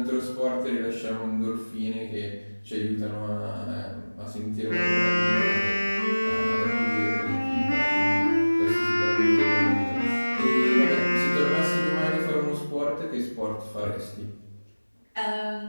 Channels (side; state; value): both; inverted; correlation -1.00